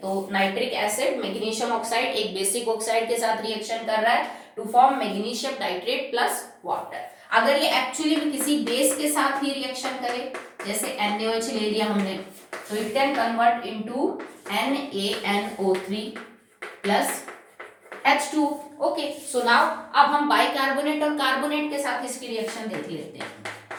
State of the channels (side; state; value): both; identical; correlation 1.00